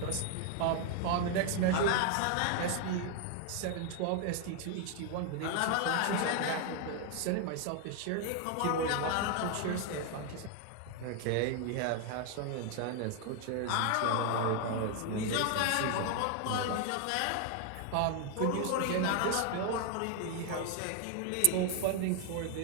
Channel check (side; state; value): both; different; correlation 0.00